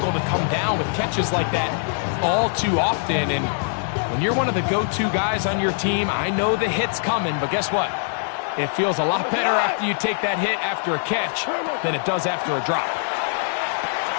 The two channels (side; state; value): right; silent; 64 dB below the other